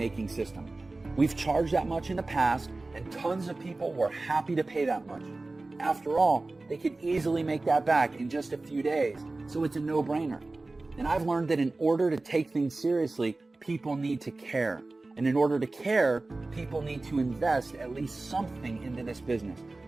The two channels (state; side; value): quieter; left; 3.2 dB